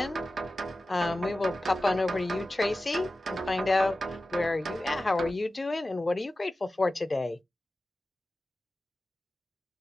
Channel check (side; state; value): both; normal; correlation 0.95